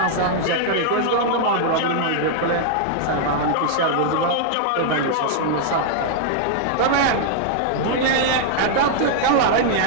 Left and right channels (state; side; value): different; both; correlation -0.01